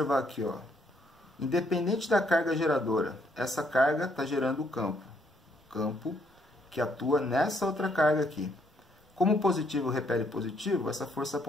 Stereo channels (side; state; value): both; normal; correlation 0.71